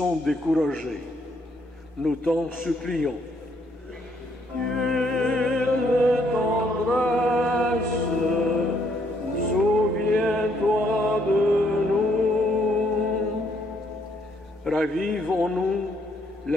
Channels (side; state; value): both; normal; correlation 0.70